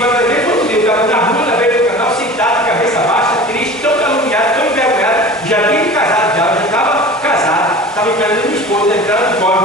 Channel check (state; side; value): normal; both; correlation 0.38